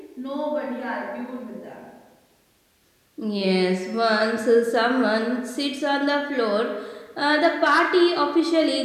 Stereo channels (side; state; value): both; identical; correlation 1.00